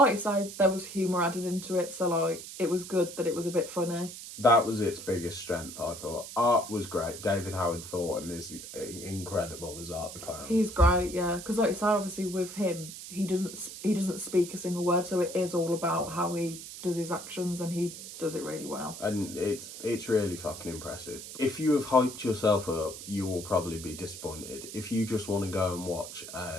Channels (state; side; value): noise; right; hiss, 11 dB below the sound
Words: I say, there was humour added into it, so like it was good that it was a bit funny. That was its biggest strength, I thought. Art was great. David Howard Thornton is incredible as Art the Clown. He's great, yeah. Because like you say, obviously with him, he doesn't speak a single word, so it is all about how he does his actions, and he does it really well. And it's really fucking impressive. If you have hyped yourself up, you will probably be disappointed. If you just want to go and watch